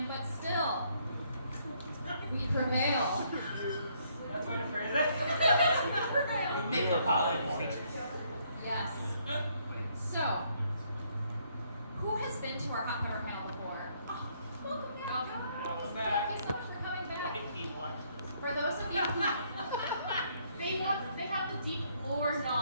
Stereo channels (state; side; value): inverted; both; correlation -0.69